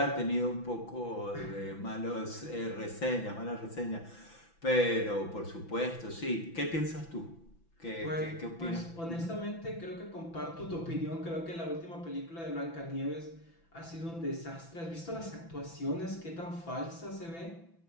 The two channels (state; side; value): late; right; 6.0 ms